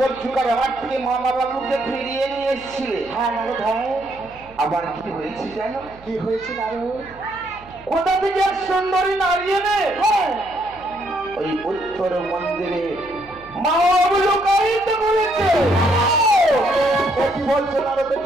আমার থেকে মামা বাবুকে ফিরিয়ে নিয়ে এসেছিলে। হ্যাঁ নারদ ভাই, আবার কি হয়েছে জানো? কি হয়েছে নারদ? কোথা থেকে এক সুন্দরী নারী এনে ওই উত্তর মন্দিরে মা বাবু লোকায়িত করেছে। কি বলছো নারদ,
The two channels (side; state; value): right; noise; hum, 23 dB below the sound